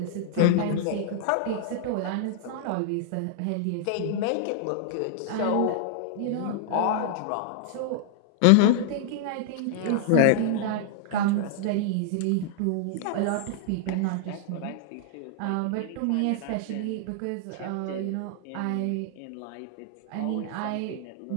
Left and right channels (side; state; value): both; different; correlation -0.01